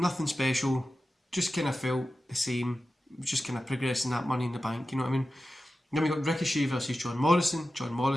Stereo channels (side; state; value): both; normal; correlation 0.93